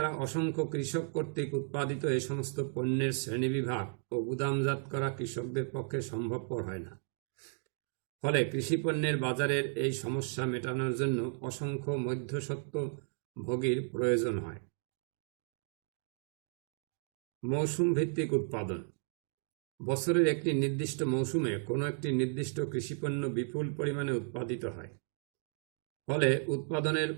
অসংখ্য কৃষক কর্তৃক উৎপাদিত এই সমস্ত পণ্যের শ্রেণীবিভাগ ও গুদামজাত করা কৃষকদের পক্ষে সম্ভবপর হয় না। ফলে কৃষিপণ্যের বাজারের এই সমস্যা মেটানোর জন্য অসংখ্য মধ্যস্বত্বভোগীর প্রয়োজন হয়। মৌসুম ভিত্তিক উৎপাদন। বছরের একটি নির্দিষ্ট মৌসুমে কোনো একটি নির্দিষ্ট কৃষিপণ্য বিপুল পরিমাণে উৎপাদিত হয়। ফলে উৎপাদনের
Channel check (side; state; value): left; silent; 55 dB below the other